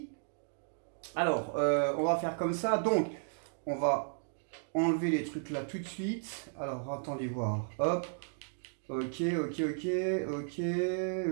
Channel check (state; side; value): silent; left; digital silence